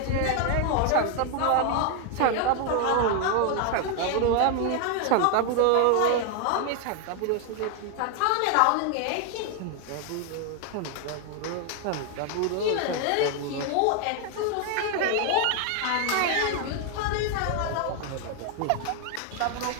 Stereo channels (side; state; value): both; different; correlation 0.00